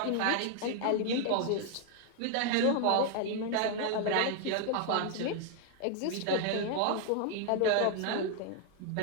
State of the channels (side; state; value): both; different; correlation 0.00